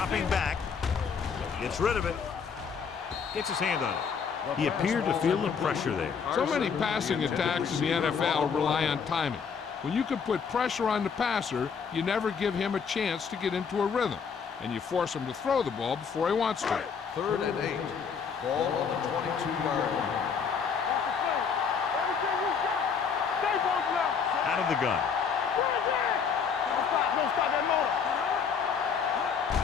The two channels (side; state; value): right; quieter; 6.3 dB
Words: back. Gets rid of it. Gets his hand on it. He appeared to feel the pressure there. So many passing attacks in the NFL rely on timing. When you can put pressure on the passer, you never give him a chance to get into a rhythm, and you force him to throw the ball before he wants to. 3rd and 8. Ball on the 22-yard line. Out of the gun.